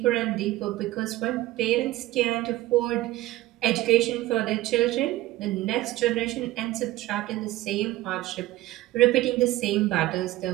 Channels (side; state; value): left; quieter; 16.5 dB